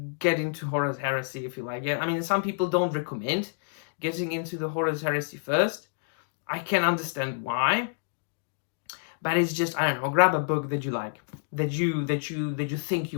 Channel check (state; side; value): silent; right; digital silence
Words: get into Horus Heresy if you like it. I mean, some people don't recommend getting into the Horus Heresy first. I can understand why. but it's just, I don't know, grab a book that you like, that you think